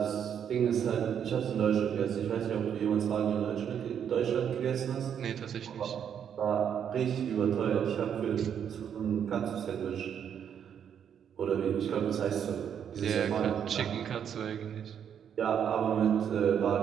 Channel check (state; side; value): quieter; left; 8.4 dB